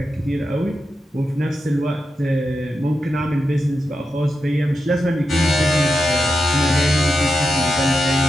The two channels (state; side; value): normal; both; correlation 0.87